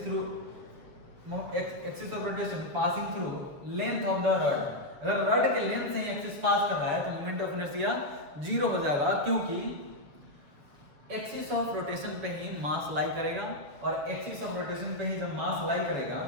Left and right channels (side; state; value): left; late; 7.3 ms